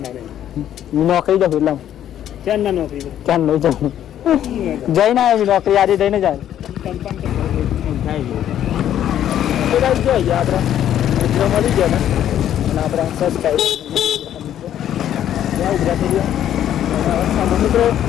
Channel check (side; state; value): right; quieter; 10.9 dB